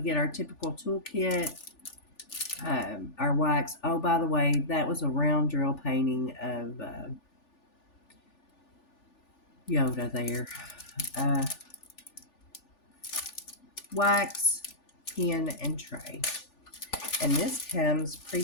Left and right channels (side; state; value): right; late; 3.4 ms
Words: our typical toolkit. Our wax. Oh, by the way, that was a round drill painting of Yoda there. Wax, pen, and tray. And this comes